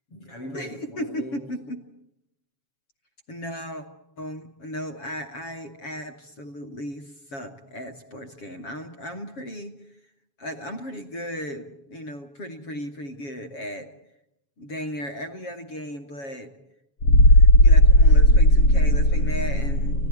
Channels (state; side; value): late; right; 7.2 ms